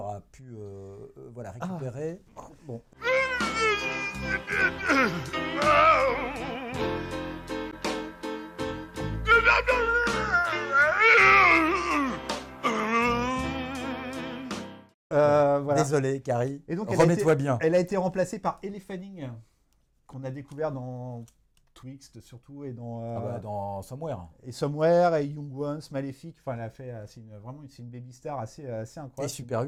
a pu voilà, récupérer. Bon. Voilà. Désolé, Carrie. Et donc, remets-toi bien. Elle a été remplacée par Elle Fanning, qu'on a découvert dans Twixt surtout et Dans Somewhere. et Somewhere et Young Ones, Maléfique. Enfin, elle a fait. C'est une baby star assez incroyable. Et Super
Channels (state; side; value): identical; both; correlation 1.00